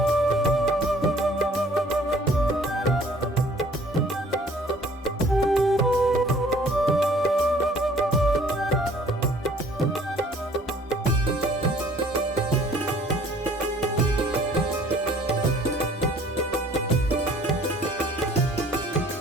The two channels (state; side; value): normal; both; correlation 0.55